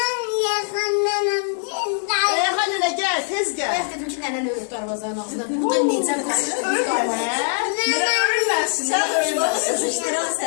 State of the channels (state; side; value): silent; right; 64 dB below the other